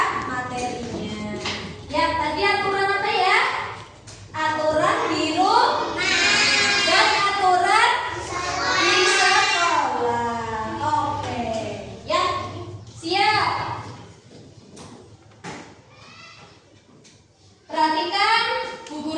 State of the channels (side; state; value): both; identical; correlation 1.00